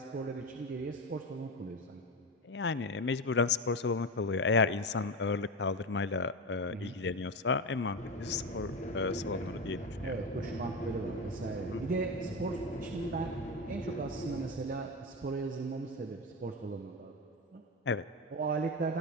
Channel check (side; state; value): both; normal; correlation 0.18